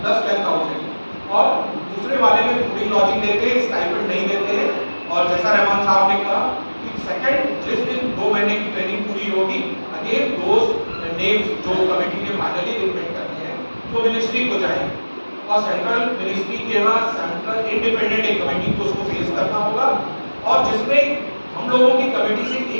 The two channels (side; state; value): both; inverted; correlation -1.00